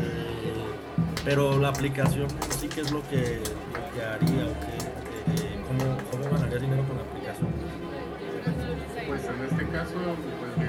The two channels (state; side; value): identical; both; correlation 1.00